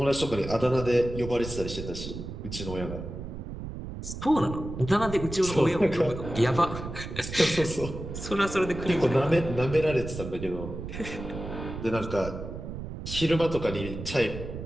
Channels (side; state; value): right; noise; rumble, 8 dB below the sound